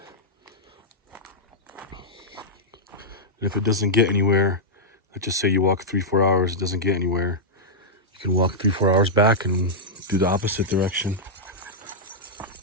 And if it doesn't get anywhere, let's just say you walk 3-4 hours, it doesn't get anywhere, you can walk 3-4 hours back and do the opposite direction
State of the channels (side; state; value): both; normal; correlation -0.09